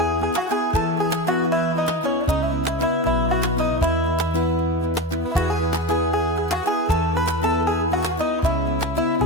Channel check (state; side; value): normal; both; correlation 0.24